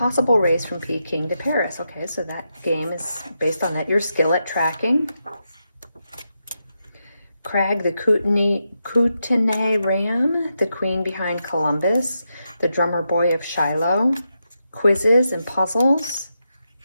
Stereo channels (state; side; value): inverted; both; correlation -0.85